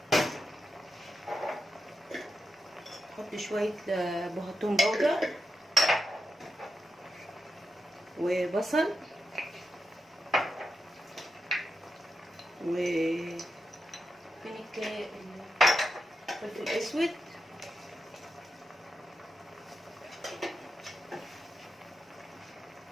احط شويه بهتون بودر وبصل وفين الفلفل الاسود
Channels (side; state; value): both; normal; correlation 0.87